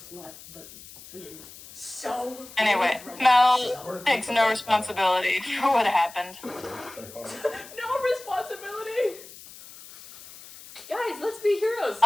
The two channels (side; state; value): left; noise; hiss, 18 dB below the sound